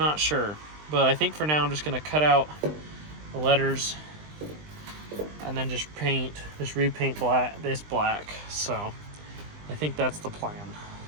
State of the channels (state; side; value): late; left; 20 ms